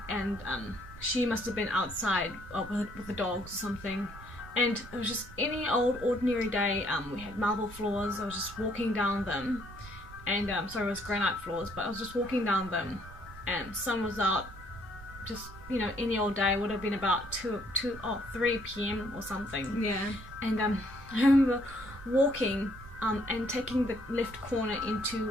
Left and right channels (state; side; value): noise; right; rumble, 16 dB below the sound